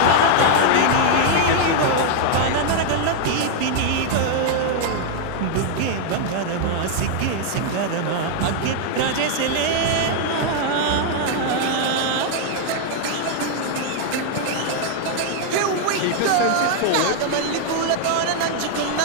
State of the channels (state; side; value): different; both; correlation 0.00